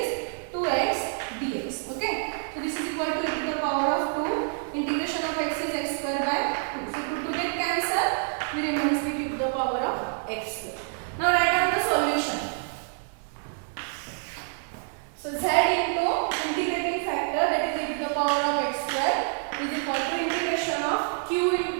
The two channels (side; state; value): left; silent; 60 dB below the other